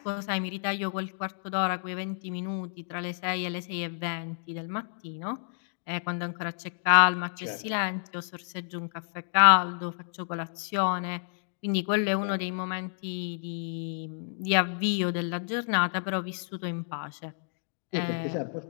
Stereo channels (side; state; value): right; silent; digital silence